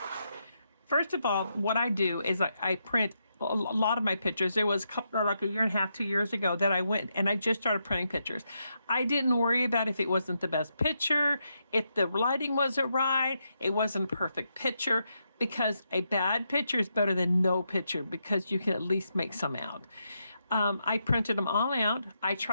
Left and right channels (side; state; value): both; inverted; correlation -0.82